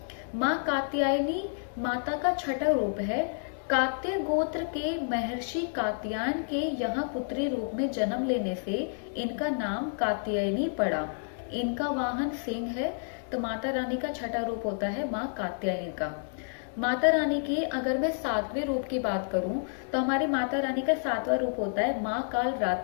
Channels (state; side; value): silent; right; digital silence